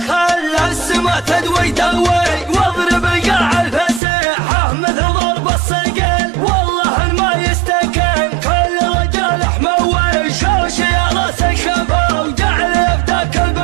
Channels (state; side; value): drops out; left; at 4.0 s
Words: خلى السما تدوي دوي واضرب قاع الفسيحة مثل ضرب الصقل. والله ما يستكن كل رجال حموي شوش يا راس الشباب وجعل يفتك